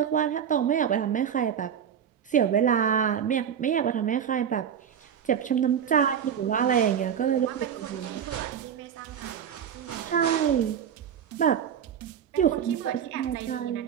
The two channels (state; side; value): quieter; left; 8.4 dB